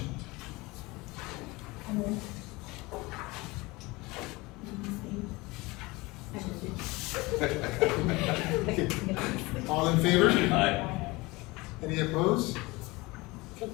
All in favor? Aye. Any opposed? Okay,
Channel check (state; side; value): quieter; right; 22.9 dB